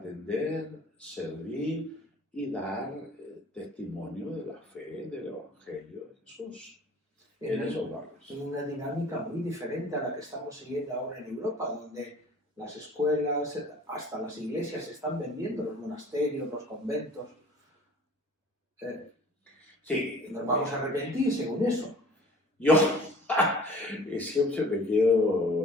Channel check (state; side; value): normal; both; correlation 0.48